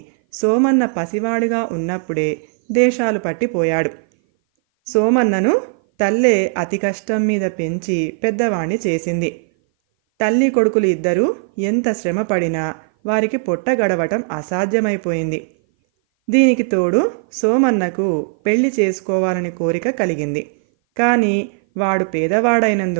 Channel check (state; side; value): silent; left; 57 dB below the other